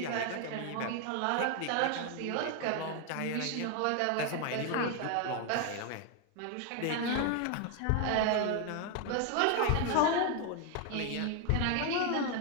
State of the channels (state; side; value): different; both; correlation 0.01